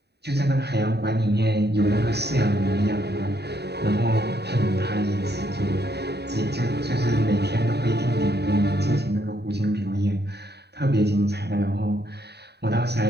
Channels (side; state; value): left; late; 0.48 ms